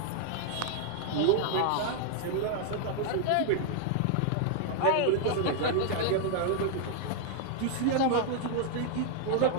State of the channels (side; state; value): both; different; correlation 0.00